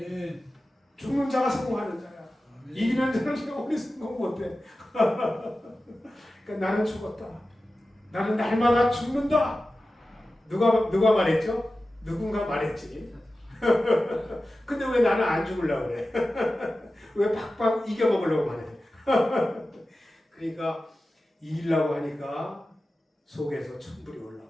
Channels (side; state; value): both; normal; correlation 0.94